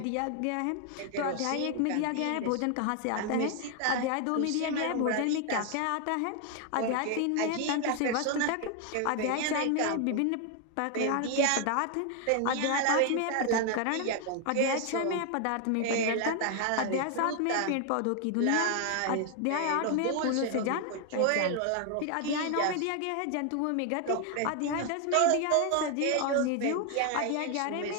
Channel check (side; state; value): both; different; correlation 0.00